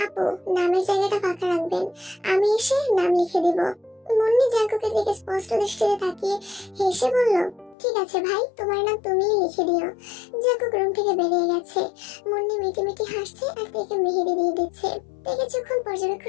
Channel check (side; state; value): right; drops out; at 7.8 s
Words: আপু নামের জায়গাটা ফাঁকা রাখবেন, আমি এসে নাম লিখে দিব। মুন্নি জাঙ্কুকের দিকে স্পষ্ট দৃষ্টিতে তাকিয়ে হেসে বলল, ঠিক আছে ভাই, তোমার নাম তুমিই লিখে দিও। জাঙ্কুক রুম থেকে বেরিয়ে গেছে। মুন্নি মিটি মিটি হাসছে আর তাকে মেহেদি দিয়ে দিচ্ছে। তে কিছুক্ষণ